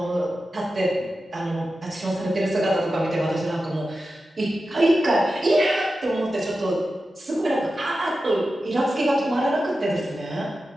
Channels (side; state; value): both; normal; correlation 0.92